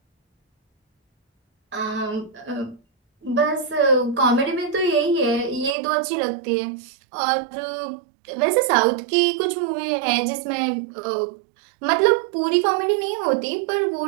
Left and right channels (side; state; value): left; drops out; at 5.8 s